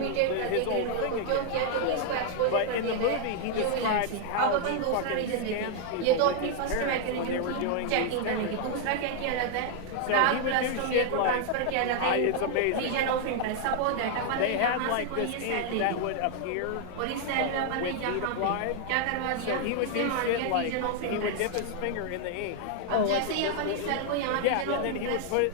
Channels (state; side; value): different; both; correlation 0.00